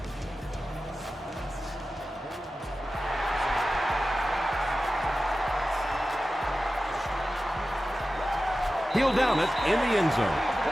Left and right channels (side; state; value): both; normal; correlation 0.94